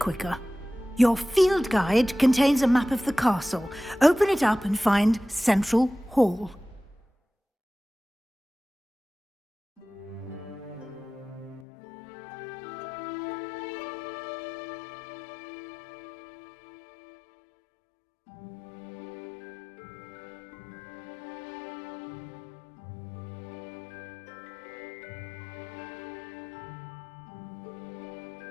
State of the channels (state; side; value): drops out; right; at 11.7 s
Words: Your field guide contains a map of the castle. Open it up and find Central Hall.